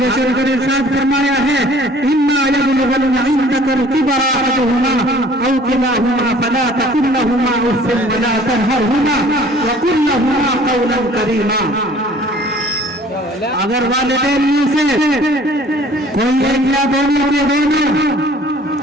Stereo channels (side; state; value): both; normal; correlation 0.52